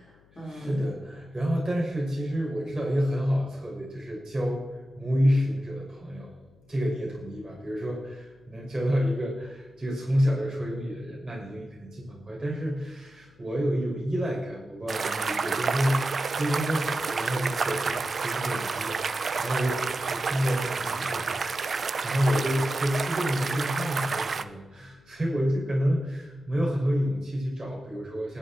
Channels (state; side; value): noise; left; hum, 30 dB below the sound